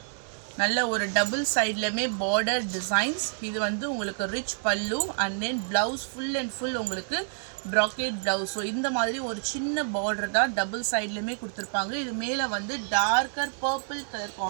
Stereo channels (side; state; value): left; silent; 59 dB below the other